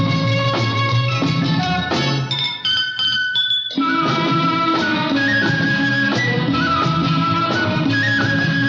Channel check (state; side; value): identical; both; correlation 1.00